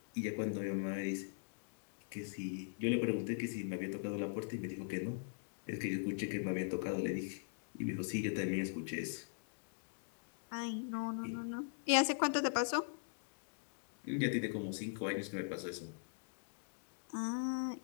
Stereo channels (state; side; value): silent; right; digital silence